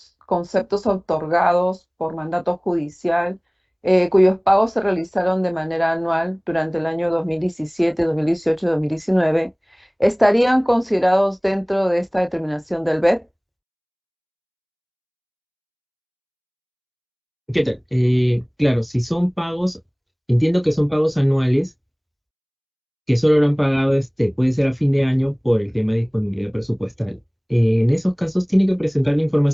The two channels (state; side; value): identical; both; correlation 1.00